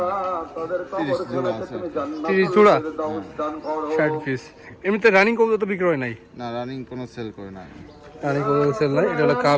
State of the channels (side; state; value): both; identical; correlation 1.00